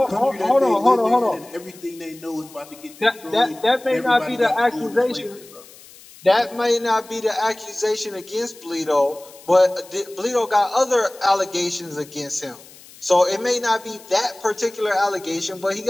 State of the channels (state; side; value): noise; left; hiss, 22 dB below the sound